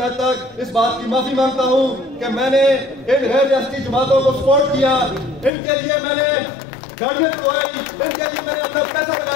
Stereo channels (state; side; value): drops out; right; at 5.5 s